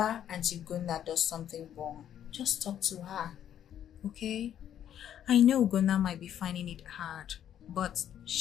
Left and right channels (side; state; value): right; quieter; 10.2 dB